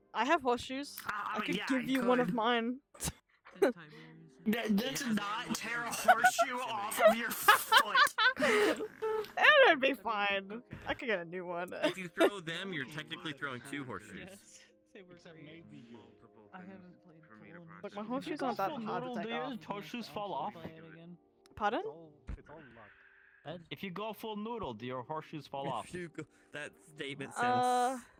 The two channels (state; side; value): identical; both; correlation 1.00